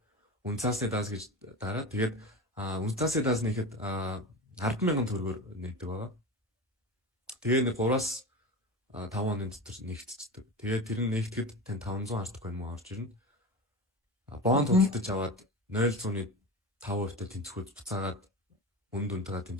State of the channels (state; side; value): normal; both; correlation 0.28